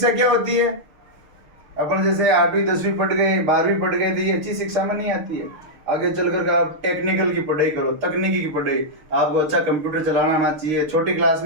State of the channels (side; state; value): left; late; 6.6 ms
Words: क्या होती है? अपन जैसे 8वीं 10वीं पढ़ गए, 12वीं पढ़ गए, तो ये अच्छी शिक्षा में नहीं आती है। आगे चल कर आप टेक्निकल की पढ़ाई करो, तकनीकी की पढ़ाई। आपको अच्छा कंप्यूटर चलाना आना चाहिए। छोटी क्लास